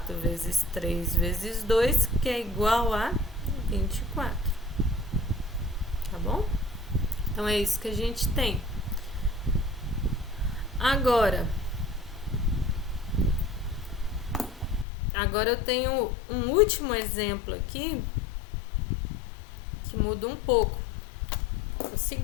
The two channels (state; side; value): drops out; right; at 14.9 s